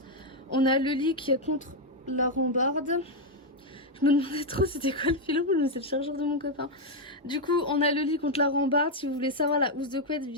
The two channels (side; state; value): both; normal; correlation 0.01